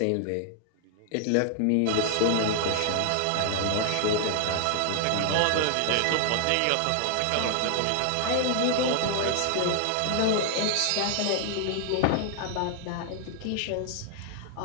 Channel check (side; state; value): both; different; correlation 0.00